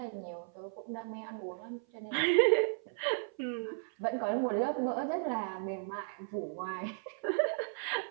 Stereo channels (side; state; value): left; silent; 54 dB below the other